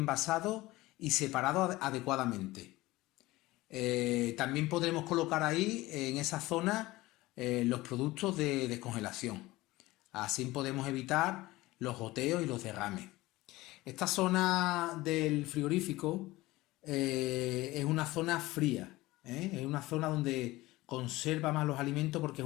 y separado adecuadamente. También podremos colocar ahí, en esa zona, los productos de descongelación. Así podemos evitar los goteos y los derrames. Esta zona del frigorífico es una zona fría, es una zona donde conserva más los alimentos porque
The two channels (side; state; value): right; quieter; 19.1 dB